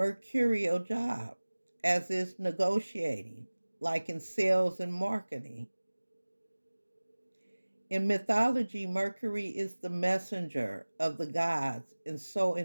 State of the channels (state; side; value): inverted; both; correlation -1.00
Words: job, as is negotiating, like in sales and marketing. In mythology, Mercury is the messenger of the gods, and so